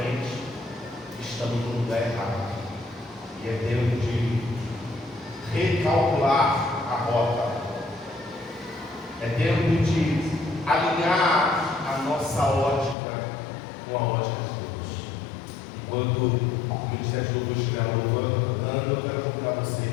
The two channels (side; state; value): right; drops out; at 13.0 s